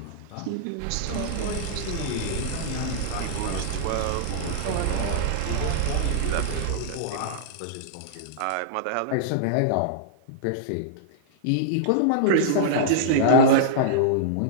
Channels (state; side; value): different; both; correlation -0.02